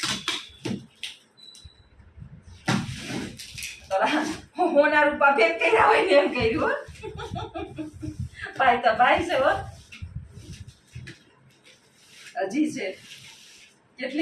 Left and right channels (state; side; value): identical; both; correlation 1.00